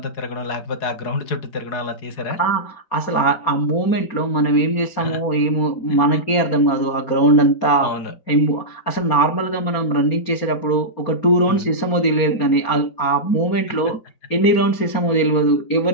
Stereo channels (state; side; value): late; right; 4.3 ms